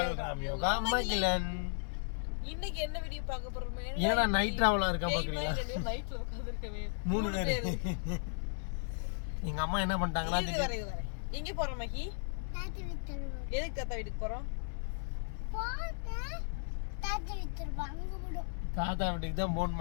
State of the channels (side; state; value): right; silent; digital silence